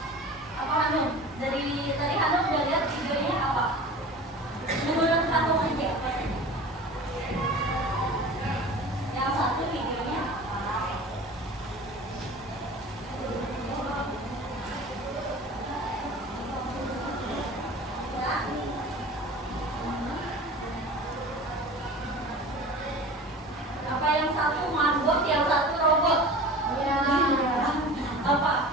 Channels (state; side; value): normal; both; correlation 0.38